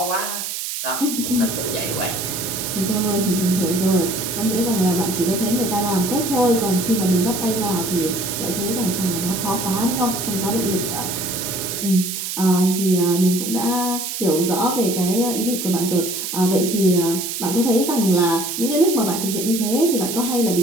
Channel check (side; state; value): right; noise; hiss, 4 dB below the sound